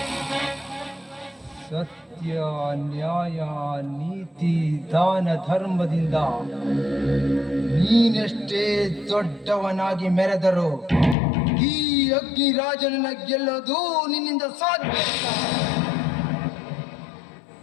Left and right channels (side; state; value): right; drops out; at 11.2 s